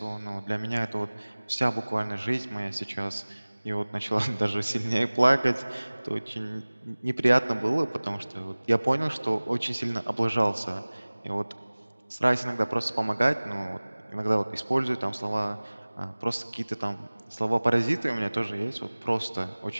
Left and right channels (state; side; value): inverted; both; correlation -1.00